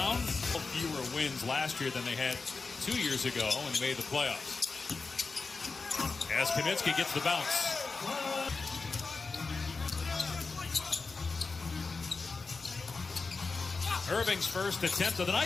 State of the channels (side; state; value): right; quieter; 4.3 dB